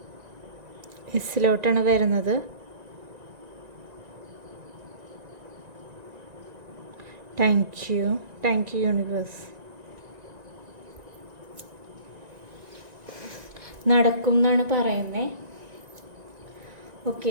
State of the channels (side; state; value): left; late; 1.9 ms